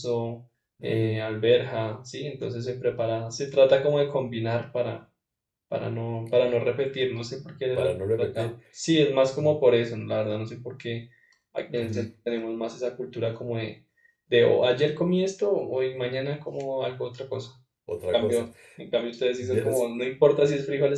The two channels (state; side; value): identical; both; correlation 1.00